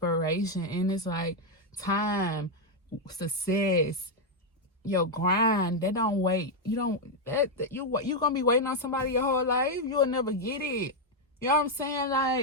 and it's like time, success, your grind. They don't wait. You're gonna be waiting on somebody your whole life. You'll never get it. You know what I'm saying?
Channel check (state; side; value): normal; both; correlation 0.01